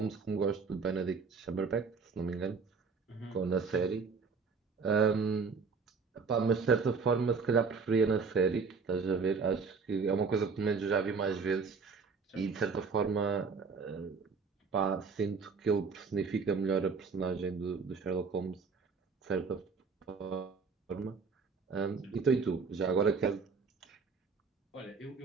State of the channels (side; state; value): left; quieter; 5.0 dB